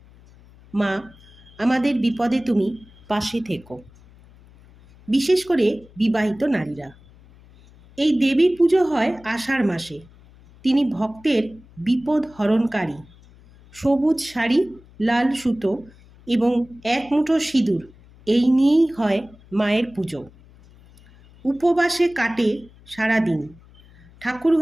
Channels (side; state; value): left; noise; hum, 25 dB below the sound